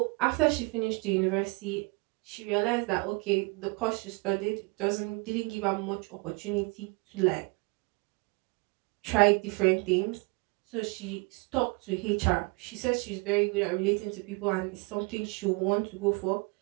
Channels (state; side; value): quieter; left; 28.8 dB